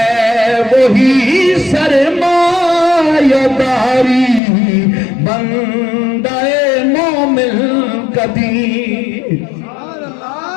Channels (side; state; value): right; drops out; at 4.4 s